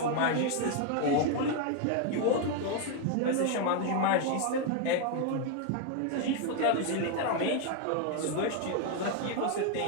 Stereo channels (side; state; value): both; different; correlation 0.01